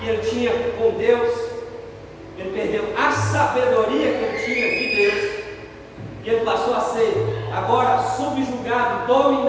ele tinha com Deus, ele perdeu a sabedoria que ele tinha de Deus, e ele passou a ser agora subjugado,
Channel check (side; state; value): both; identical; correlation 1.00